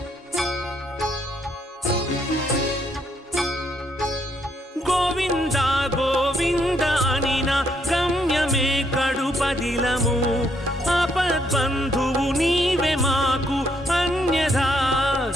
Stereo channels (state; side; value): normal; both; correlation 0.73